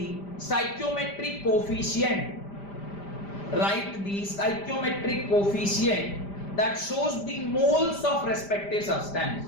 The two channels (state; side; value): late; right; 5.0 ms